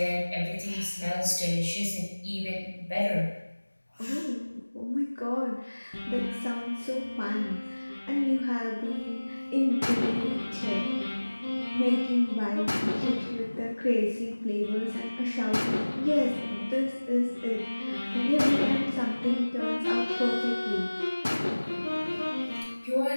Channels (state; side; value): inverted; both; correlation -1.00